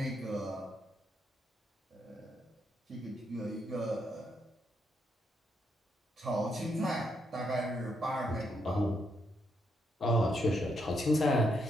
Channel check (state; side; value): normal; both; correlation 0.78